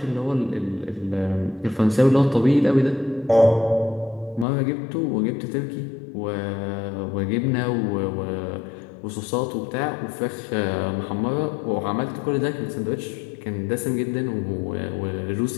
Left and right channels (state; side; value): drops out; right; at 4.5 s